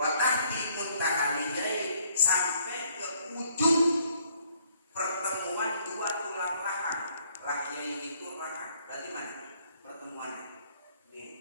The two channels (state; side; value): inverted; both; correlation -0.65